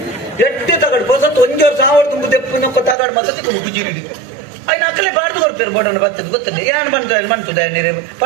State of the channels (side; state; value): left; drops out; at 3.0 s